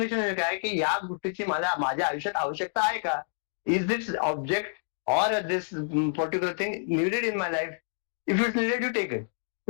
काय की या गोष्टीची माझ्या आयुष्यात आवश्यकता आहे का. Is this object or this particular thing needed in my life? If it's needed, you take it.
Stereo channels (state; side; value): silent; right; digital silence